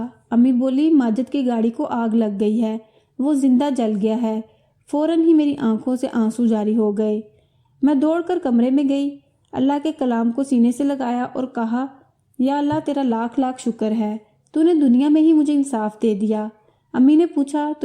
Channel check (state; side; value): identical; both; correlation 1.00